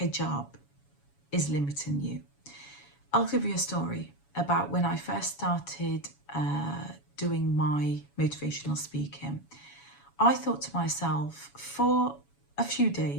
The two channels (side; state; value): right; late; 7.1 ms